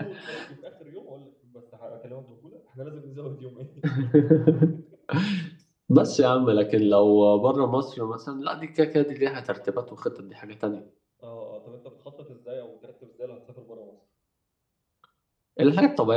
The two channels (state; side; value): identical; both; correlation 1.00